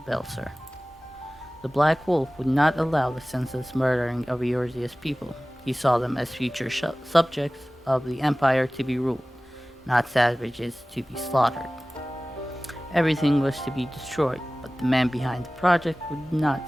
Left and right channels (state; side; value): normal; both; correlation 0.98